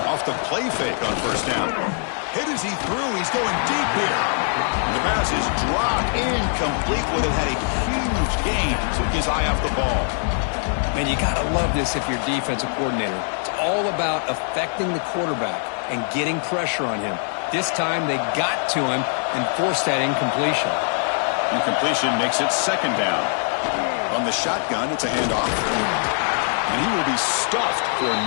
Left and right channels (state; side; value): silent; right; 57 dB below the other